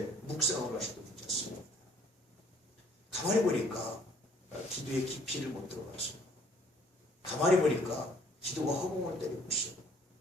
묵상을 하셔도 괜찮습니다. 가만히 보니까 기도의 깊이를 못 들어갔어요. 가만히 보니까 기도가 허공을 때리고 있어요.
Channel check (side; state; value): both; normal; correlation 0.60